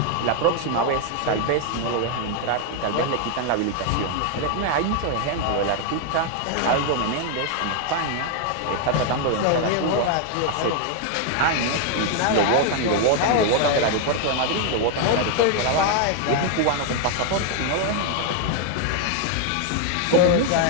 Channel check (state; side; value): different; both; correlation 0.00